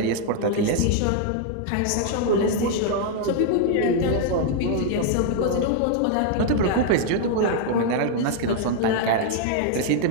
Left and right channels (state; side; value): different; both; correlation 0.00